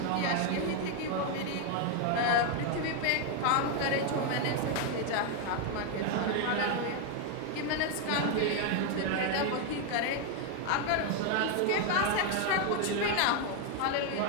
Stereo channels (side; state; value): both; different; correlation 0.01